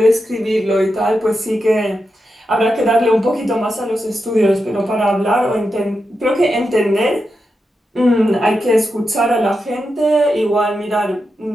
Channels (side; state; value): both; normal; correlation 0.88